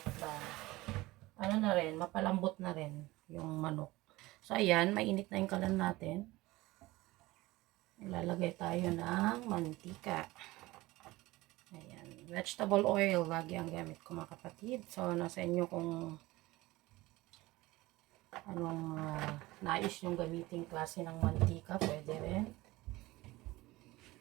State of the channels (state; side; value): quieter; left; 19.6 dB